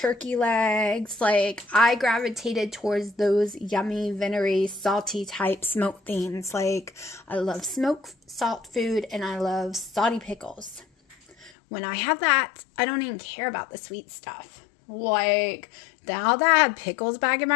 legs. Like, I gravitated towards those yummy, vinegary, salty type smoked things. Like, I love smoked salt food and I love salty pickles. When I have that, I don't even care about the sweet stuff. Like, now that I have pickles back in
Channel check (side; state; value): right; drops out; at 11.5 s